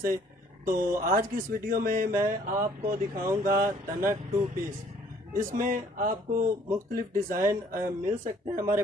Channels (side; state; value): both; normal; correlation 0.60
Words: तो आज की इस वीडियो में मैं आपको दिखाऊंगा तनक टू पीस। इसमें आपको मुख्तलिफ डिज़ाइन मिल सकते हैं हमारे